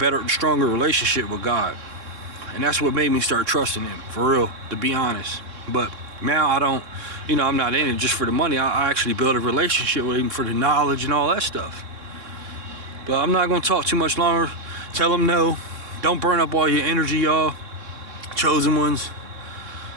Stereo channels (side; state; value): left; late; 3.6 ms